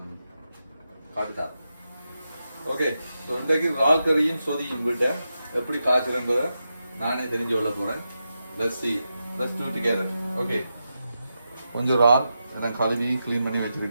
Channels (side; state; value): both; inverted; correlation -0.88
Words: காட்டுத்தார். ஓகே, ஸோ இன்றைக்கு இறால் கறியும் சொதியும் விட்ட எப்படி காய்ச்சுறன்றதை நானே தெரிஞ்சு கொள்ள போறேன். Let's do together. ஓகே, கொஞ்சம் இறால் எல்லாம் கழுவி க்ளீன் பண்ணி